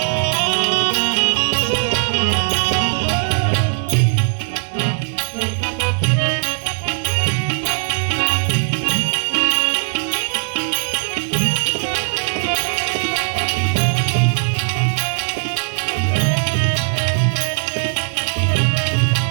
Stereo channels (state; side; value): silent; left; 67 dB below the other